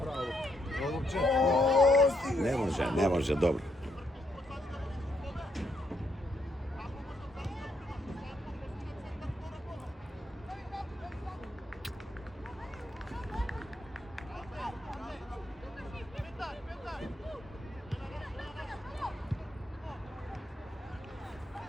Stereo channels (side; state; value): both; normal; correlation 0.76